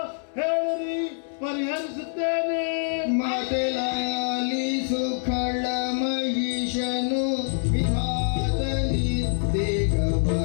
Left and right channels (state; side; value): silent; right; digital silence